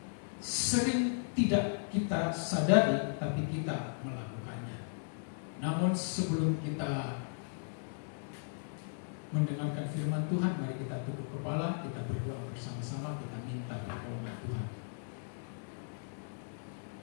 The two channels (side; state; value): right; silent; digital silence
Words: sering tidak kita sadari, tapi kita melakukannya. Namun sebelum kita mendengarkan firman Tuhan, mari kita tunduk kepala, kita berdoa bersama-sama, kita minta pertolongan Tuhan.